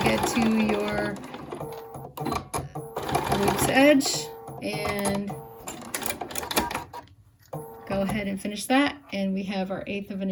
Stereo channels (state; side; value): identical; both; correlation 1.00